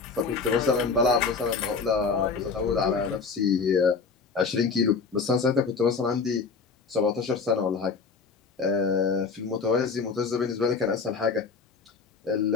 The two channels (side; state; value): right; quieter; 4.9 dB